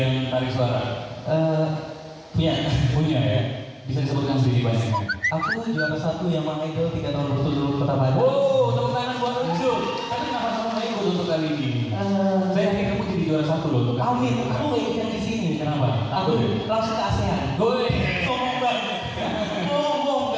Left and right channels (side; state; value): both; identical; correlation 1.00